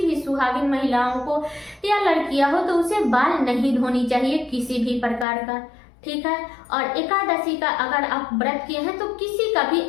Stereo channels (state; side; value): drops out; right; at 5.2 s